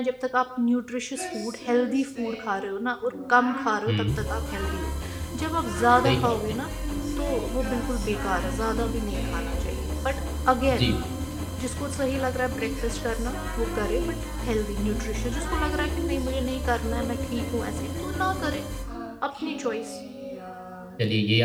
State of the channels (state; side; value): identical; both; correlation 1.00